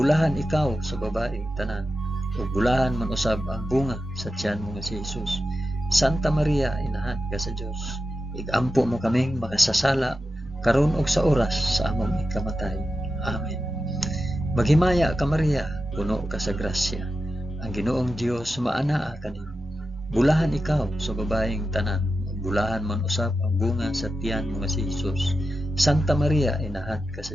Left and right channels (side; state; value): both; normal; correlation 0.90